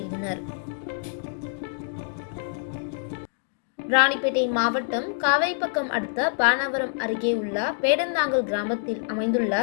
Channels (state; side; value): silent; right; digital silence